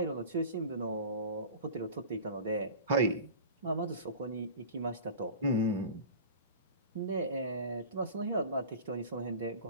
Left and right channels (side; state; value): both; inverted; correlation -0.36